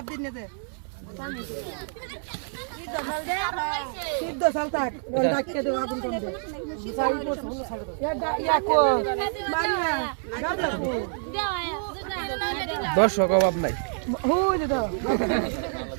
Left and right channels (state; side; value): silent; left; 60 dB below the other